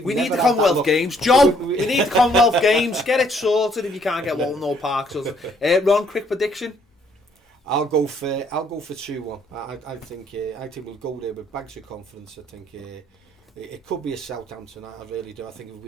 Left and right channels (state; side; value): normal; both; correlation 0.66